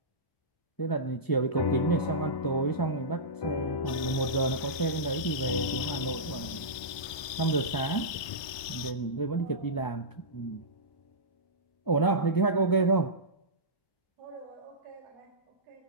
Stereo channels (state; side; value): late; right; 1.3 ms